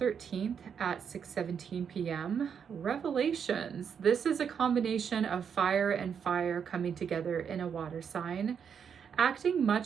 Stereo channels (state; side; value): quieter; left; 7.3 dB